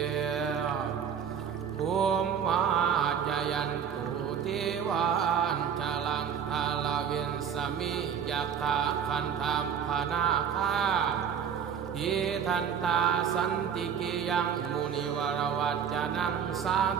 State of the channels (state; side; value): quieter; left; 7.7 dB